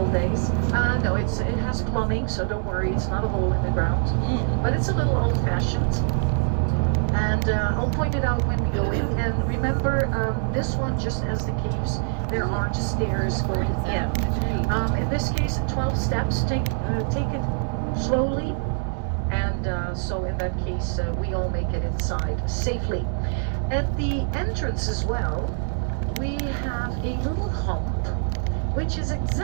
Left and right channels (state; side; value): silent; left; 62 dB below the other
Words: days. No, it has plumbing, so don't worry, it's not a hole in the ground. But it's a little old-fashioned. And I'll point it out when we go in. And remember, this one, just as the caves, there are stairs going in. In this case, 12 steps. Take it slowly. And so in that case, we all make it inside safely. At the entrance as well, we have a little hump, which is